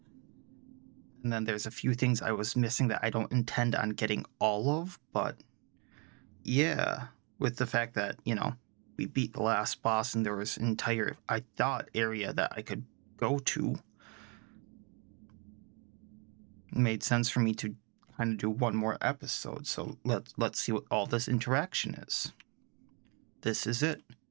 then there's a few things I was missing that I don't intend on getting all of, but yeah, with the fact that, you know, we beat the last boss and there was an entire, I thought, area that I could go to, it made sense for me to kind of do 1 more episode. So let's see what all this interaction is. This is it.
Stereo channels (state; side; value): quieter; left; 32.5 dB